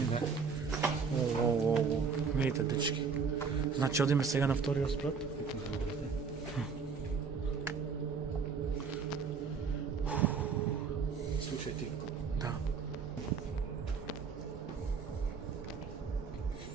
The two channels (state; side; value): quieter; left; 5.5 dB